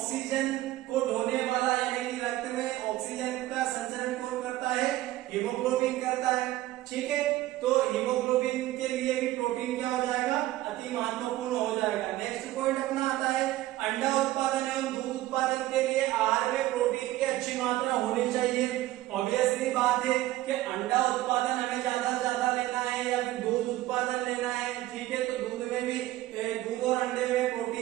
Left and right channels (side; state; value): left; quieter; 15.9 dB